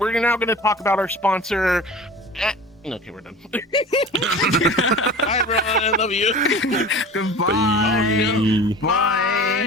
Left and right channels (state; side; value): normal; both; correlation 0.38